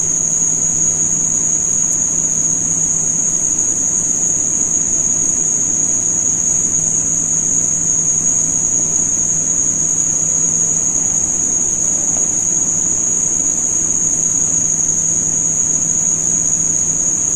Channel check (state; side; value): identical; both; correlation 1.00